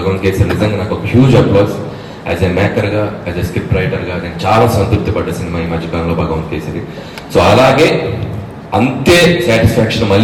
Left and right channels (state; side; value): identical; both; correlation 1.00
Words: కేసరి నిజంగా నాకు ఒక హ్యూజ్ అప్లాస్. యాజ్ ఎ మేకర్గా, యాజ్ ఎ స్క్రిప్ట్ రైటర్గా నేను చాలా సంతృప్తి పడ్డ సినిమా ఈ మధ్యకాలంలో భగవాన్ కేసరి. సో అలాగే అంతే సాటిస్ఫాక్షన్